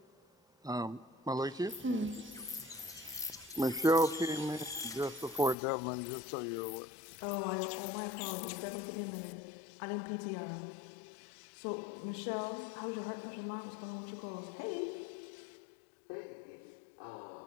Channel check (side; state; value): right; drops out; at 5.6 s